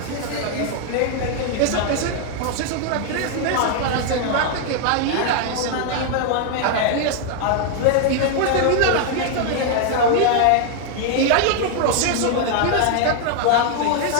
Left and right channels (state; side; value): different; both; correlation 0.00